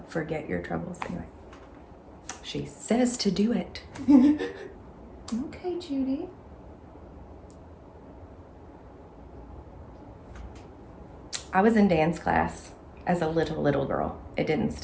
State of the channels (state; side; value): identical; both; correlation 1.00